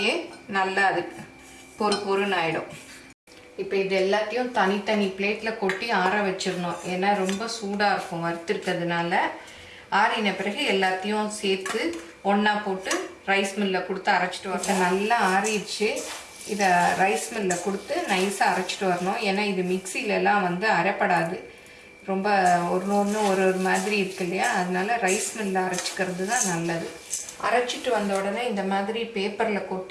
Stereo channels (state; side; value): identical; both; correlation 1.00